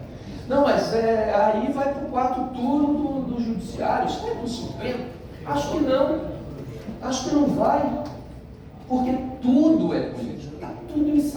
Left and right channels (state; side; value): identical; both; correlation 1.00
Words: Não, mas aí vai para o quarto turno do judiciário, isso vai para o Supremo? Acho que não vai, porque tudo é político, está tudo